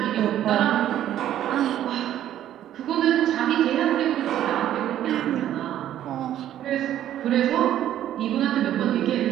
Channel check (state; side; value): quieter; left; 11.7 dB